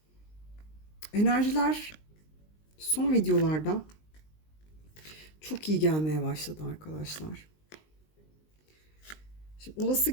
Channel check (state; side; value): late; right; 19 ms